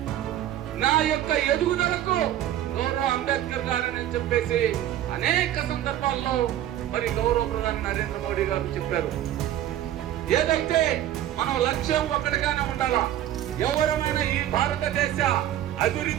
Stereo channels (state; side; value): quieter; left; 12.3 dB